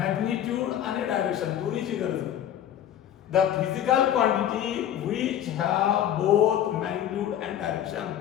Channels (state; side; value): quieter; right; 10.7 dB